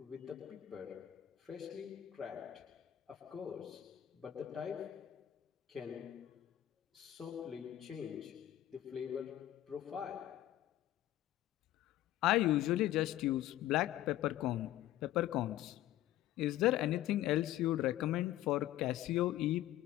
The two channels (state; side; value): quieter; right; 13.7 dB